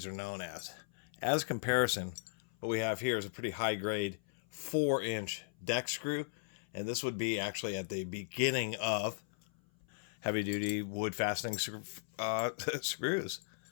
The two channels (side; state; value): right; silent; 53 dB below the other